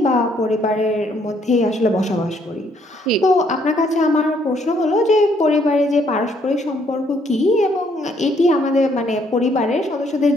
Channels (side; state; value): both; normal; correlation 0.68